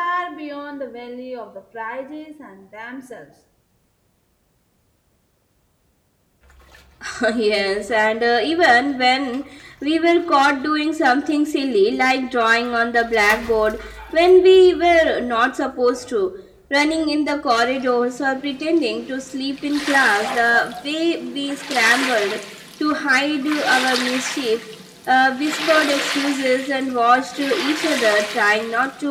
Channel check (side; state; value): both; identical; correlation 1.00